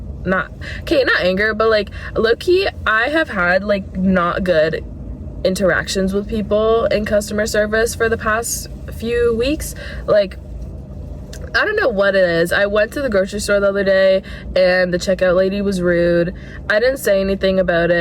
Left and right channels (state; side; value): identical; both; correlation 1.00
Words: not anger, but like low-key, I have had like not good interactions with people in customer service for the past few weeks. Like I don't know what it is. I went to the grocery store the other day and the checkout lady was rude. I didn't say anything about